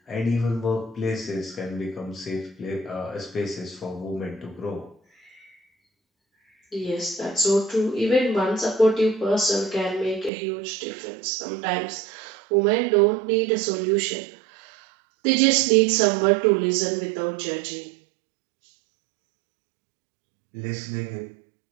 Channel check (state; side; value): drops out; left; at 10.3 s